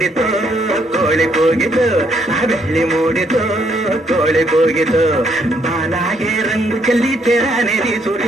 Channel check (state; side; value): normal; both; correlation 0.71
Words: ಕೋಳಿ ಕೂಗಿತು, ಬೆಳ್ಳಿ ಮೂಡಿತು ಕೋಳಿ ಕೂಗಿತು. ಬಾಲಾಗೆ ರಂಗು ಚೆಲ್ಲಿ ತೆರಾನೇರಿ